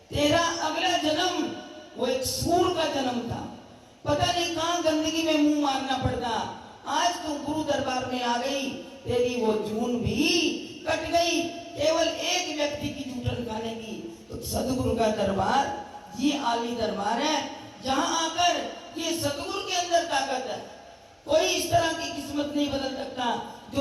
तेरा अगला जन्म वो एक सूर का जन्म था, पता नहीं कहां गंदगी में मुंह मारना पड़ता। आज तू गुरु दरबार में आ गई, तेरी वो जून भी कट गई, केवल एक व्यक्ति की जूठन खाने की। तो सदगुरु का दरबार ये आली दरबार है, जहां आकर ये सदगुरु के अंदर ताकत है। कोई इस तरह की किस्मत नहीं बदल सकता।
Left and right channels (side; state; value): both; identical; correlation 1.00